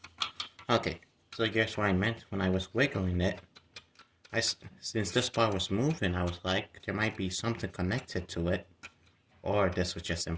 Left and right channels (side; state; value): both; identical; correlation 1.00